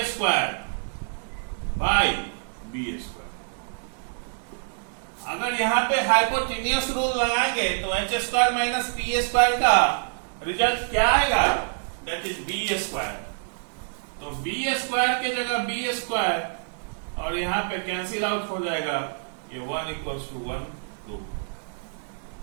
square by b square. अगर यहाँ पे हाइपोटेन्यूस रूल लगाएंगे तो H square minus P square का रिजल्ट क्या आएगा? That is B square. तो बी स्क्वायर के जगह बी स्क्वायर और यहाँ पे कैंसिल आउट हो जाएगा, ये 1 इक्वल्स टू 1 2।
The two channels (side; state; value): left; silent; digital silence